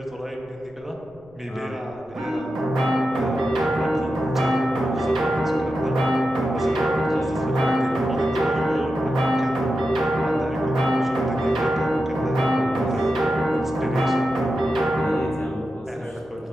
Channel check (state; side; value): noise; left; rumble, 27 dB below the sound